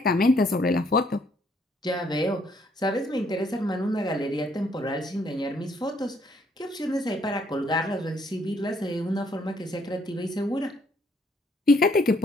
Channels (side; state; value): both; normal; correlation 0.67